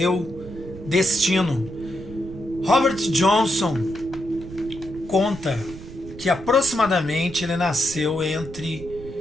destino. Robert Johnson conta que aproximadamente ele nasceu entre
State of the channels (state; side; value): noise; right; rumble, 14 dB below the sound